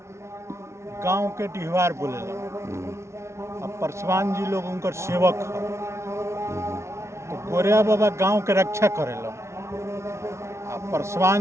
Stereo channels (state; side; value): late; left; 0.13 ms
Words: गांव के डिहवार बोले अब परसवान जी लोग उनकर सेवक है। तो गोरिया बाबा गांव के रक्षा करेला।